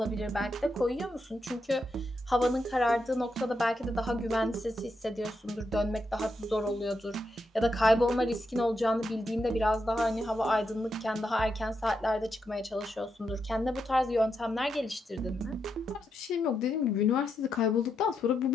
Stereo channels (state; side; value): normal; both; correlation 0.83